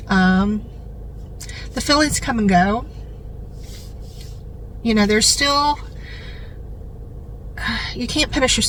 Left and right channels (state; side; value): identical; both; correlation 1.00